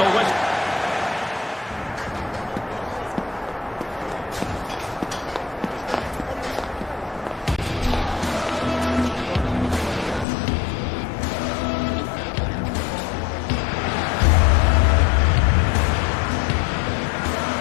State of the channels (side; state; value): right; drops out; at 10.2 s